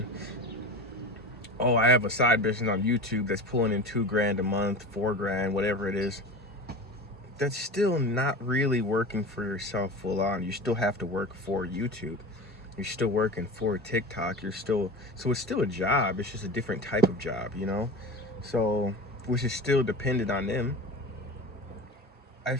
oh, I have a side business on YouTube that's pulling in $2,000 a month, $4,000, whatever it is. That's still not really working for yourself full on. You still have to work for YouTube. You're still working for TikTok. So it's still a job. It's just a different type of job, you know? So, which is still dependent on them. I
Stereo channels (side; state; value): both; normal; correlation 0.31